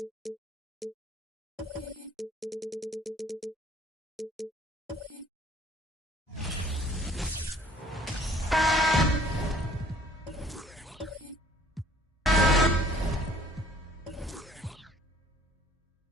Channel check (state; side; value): normal; both; correlation 0.57